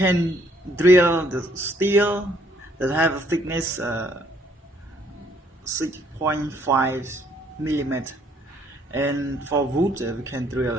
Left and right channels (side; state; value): both; normal; correlation 0.66